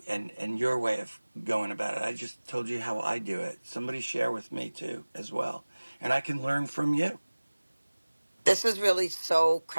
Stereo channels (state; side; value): inverted; both; correlation -1.00